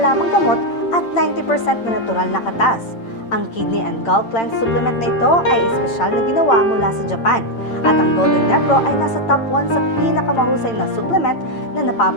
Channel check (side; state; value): right; late; 8.8 ms